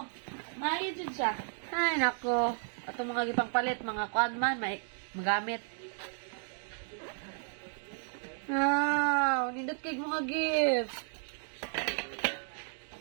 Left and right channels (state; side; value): silent; left; 56 dB below the other